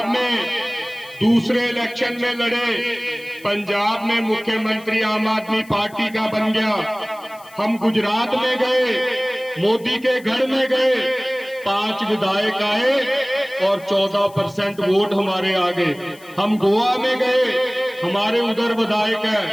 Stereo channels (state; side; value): noise; left; hiss, 24 dB below the sound